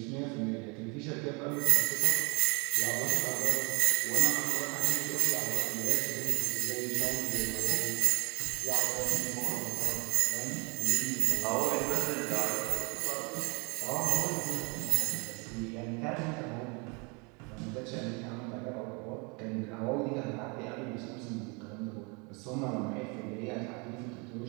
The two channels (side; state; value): left; quieter; 31.3 dB